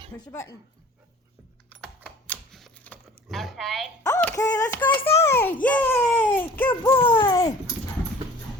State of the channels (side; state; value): both; normal; correlation 0.47